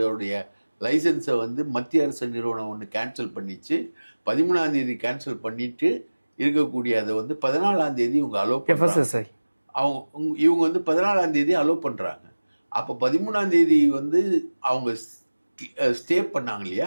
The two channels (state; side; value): inverted; both; correlation -1.00